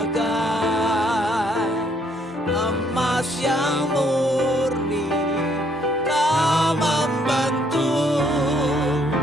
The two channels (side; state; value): both; normal; correlation 0.68